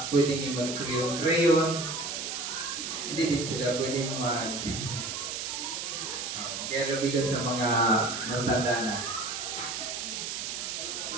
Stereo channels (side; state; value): right; noise; hiss, 4 dB below the sound